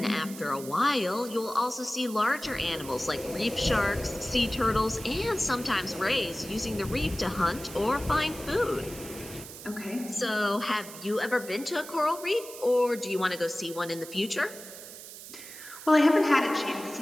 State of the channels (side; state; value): right; noise; hiss, 14 dB below the sound